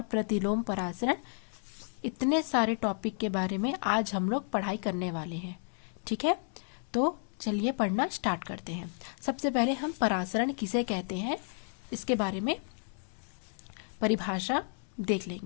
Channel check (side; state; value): right; silent; 56 dB below the other